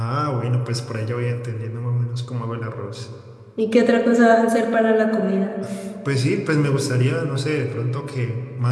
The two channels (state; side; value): identical; both; correlation 1.00